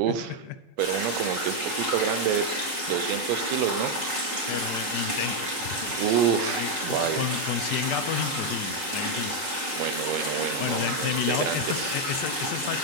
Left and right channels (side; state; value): left; late; 5.3 ms